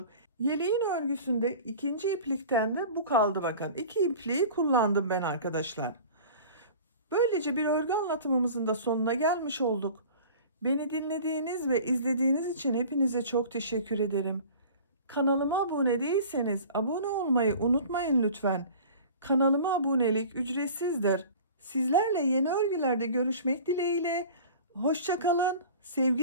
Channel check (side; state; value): both; inverted; correlation -0.41